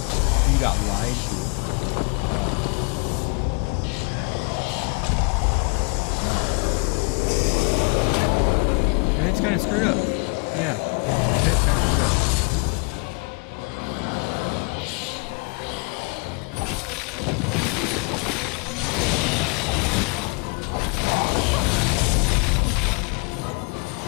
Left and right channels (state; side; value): quieter; right; 33.7 dB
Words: you got lied to. And it's kind of screwed up. Yeah, it's kind of screwed up.